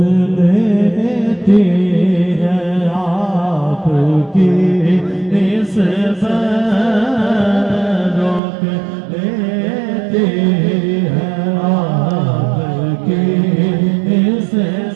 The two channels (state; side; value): drops out; left; at 8.4 s